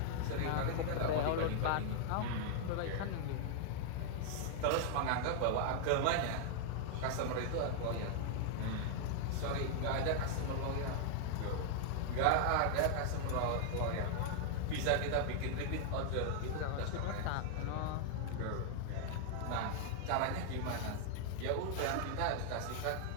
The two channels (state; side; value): different; both; correlation 0.00